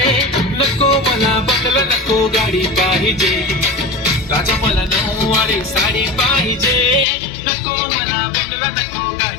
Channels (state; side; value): drops out; right; at 7.1 s